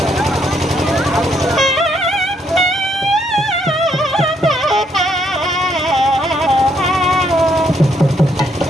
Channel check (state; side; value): normal; both; correlation 0.72